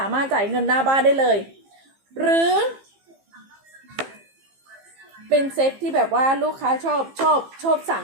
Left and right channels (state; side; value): late; left; 15 ms